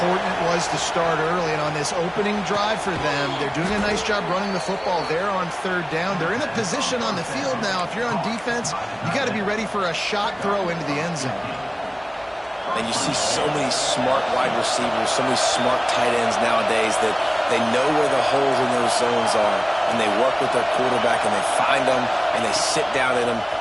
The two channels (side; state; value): both; identical; correlation 1.00